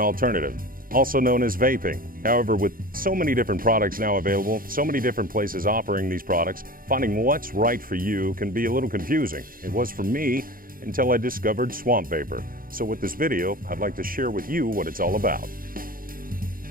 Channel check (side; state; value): left; late; 0.41 ms